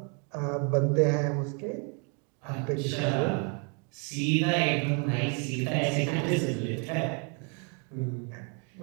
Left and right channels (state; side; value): quieter; left; 37.4 dB